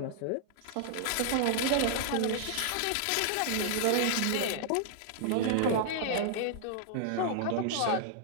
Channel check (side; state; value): both; different; correlation -0.01